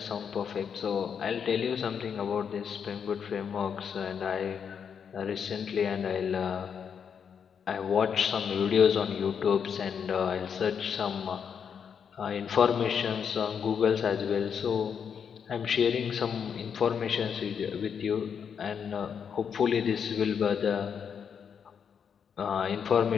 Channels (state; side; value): quieter; right; 7.2 dB